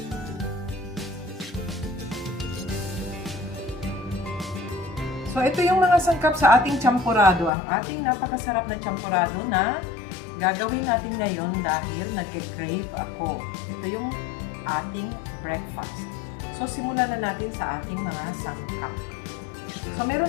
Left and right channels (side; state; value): right; drops out; at 7.5 s